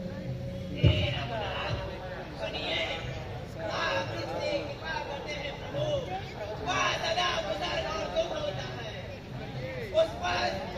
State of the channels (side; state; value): both; identical; correlation 1.00